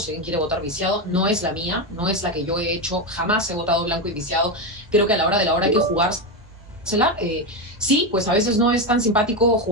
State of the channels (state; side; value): normal; both; correlation 0.12